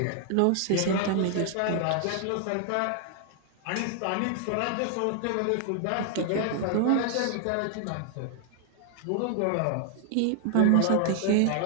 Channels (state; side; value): different; both; correlation 0.00